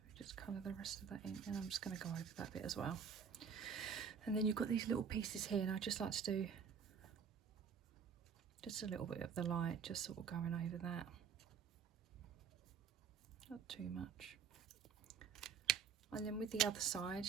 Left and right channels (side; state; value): left; quieter; 6.8 dB